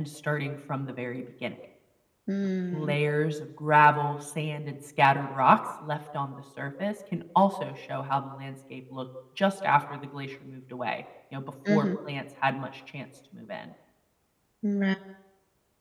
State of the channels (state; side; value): identical; both; correlation 1.00